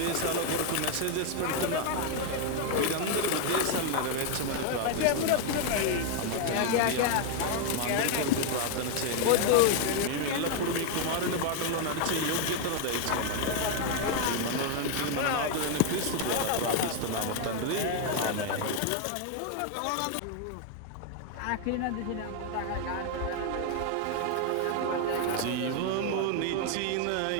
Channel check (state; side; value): different; both; correlation 0.00